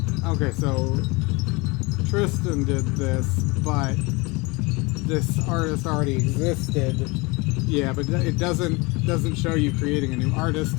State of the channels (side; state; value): right; quieter; 26.1 dB